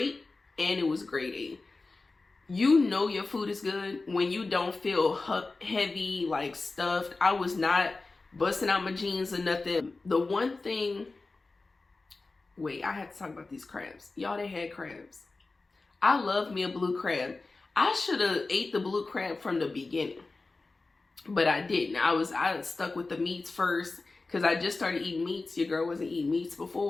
and it was grade A. You know your food is good when you don't feel heavy, like stuffed. I was not busting out my jeans or nothing. The one thing, wait, I have to talk about these crabs. Y'all, they had crabs. I love me a blue crab. I should have ate the blue crab from the beginning, but I didn't. I stuck with the meats first because I just started eating meats. Your girl wasn't eating meats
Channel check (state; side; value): quieter; right; 3.6 dB